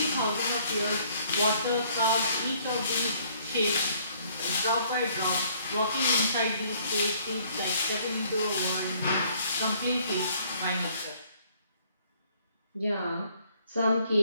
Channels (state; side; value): inverted; both; correlation -0.62